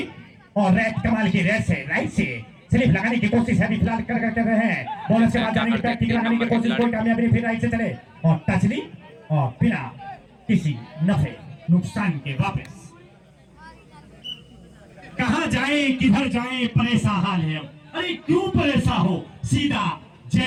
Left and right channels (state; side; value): identical; both; correlation 1.00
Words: और रेड कमाल की रेड से राइट से स्लिप लगाने की कोशिश है, अभी फिलहाल कर रहे हैं। बॉलर से बात जाने की बैक लगाने की कोशिश, कोई कामयाबी नहीं, फिर राइट से चले और टच ली और बिना किसी नफे नुकसान के वापस। कहां जाए किधर जाए परेशान हाल है। अरे क्यों परेशान हो, सीधा